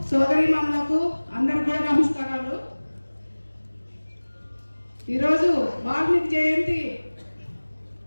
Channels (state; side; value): inverted; both; correlation -1.00